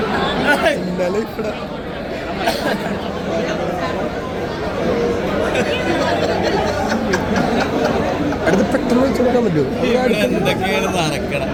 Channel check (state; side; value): identical; both; correlation 1.00